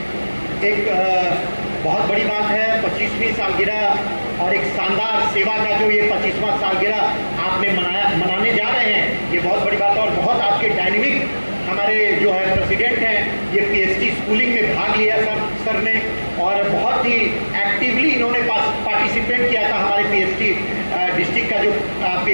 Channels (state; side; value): inverted; both; correlation -1.00